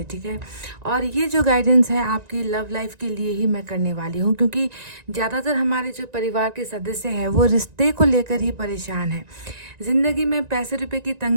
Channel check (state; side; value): late; left; 1.9 ms